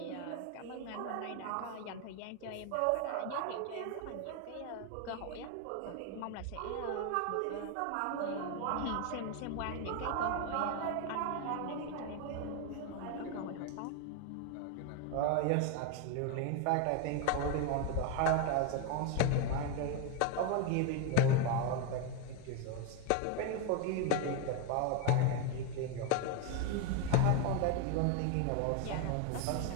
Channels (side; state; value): both; different; correlation 0.01